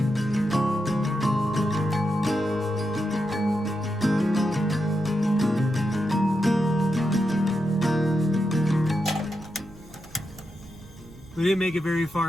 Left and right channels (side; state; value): right; noise; rumble, 20 dB below the sound